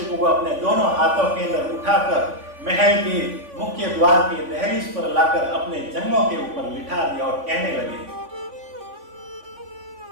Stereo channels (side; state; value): left; late; 3.5 ms